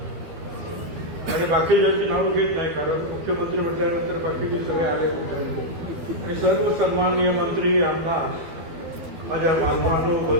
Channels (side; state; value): left; late; 12 ms